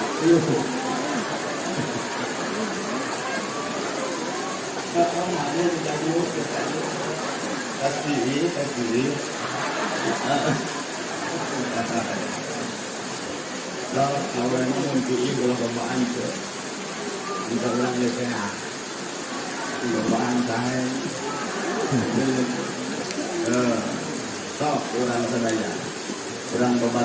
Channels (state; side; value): identical; both; correlation 1.00